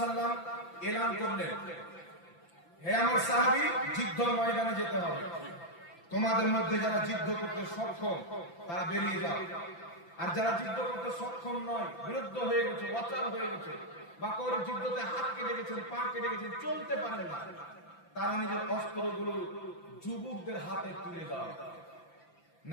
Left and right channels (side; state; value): right; late; 5.9 ms